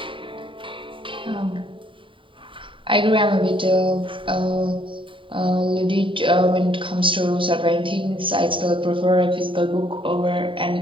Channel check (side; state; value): left; late; 0.25 ms